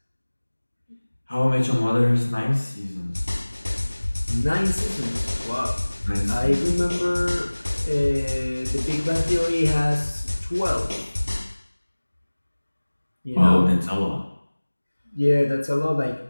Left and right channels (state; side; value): inverted; both; correlation -1.00